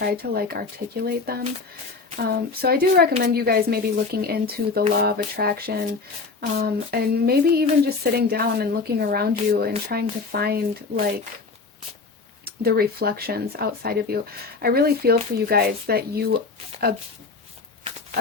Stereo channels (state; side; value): quieter; right; 4.3 dB